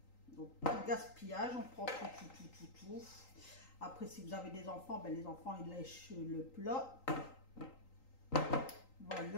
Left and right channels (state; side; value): late; right; 3.8 ms